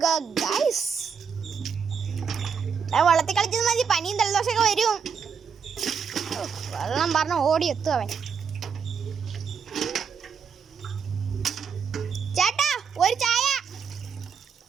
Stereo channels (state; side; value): quieter; left; 6.5 dB